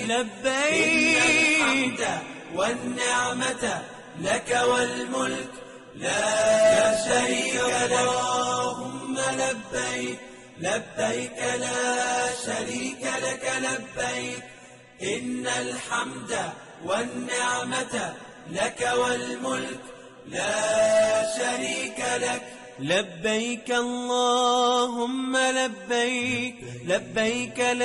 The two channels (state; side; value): identical; both; correlation 1.00